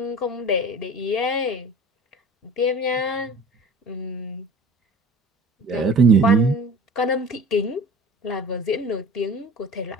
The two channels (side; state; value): both; normal; correlation 0.41